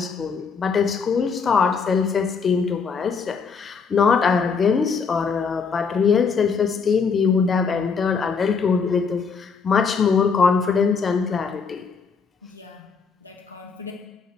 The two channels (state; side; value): quieter; right; 5.5 dB